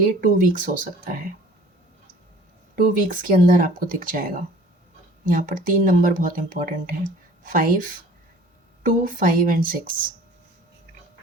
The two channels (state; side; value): normal; both; correlation 0.49